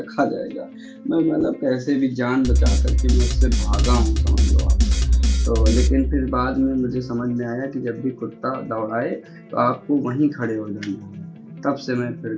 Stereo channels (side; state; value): both; identical; correlation 1.00